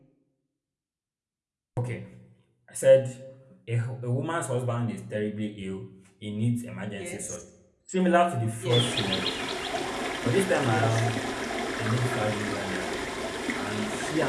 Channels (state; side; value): identical; both; correlation 1.00